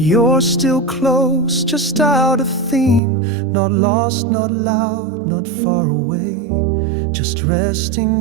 still close, just out of theme, not lost, not loud, not far away, just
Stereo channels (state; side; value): drops out; left; at 3.0 s